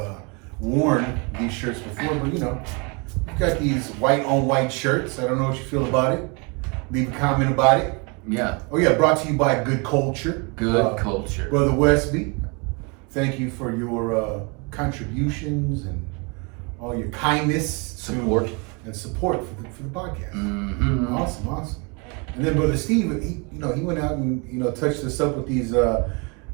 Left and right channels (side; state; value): left; quieter; 31.3 dB